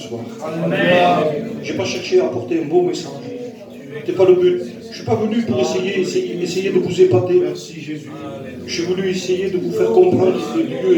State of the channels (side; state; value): both; identical; correlation 1.00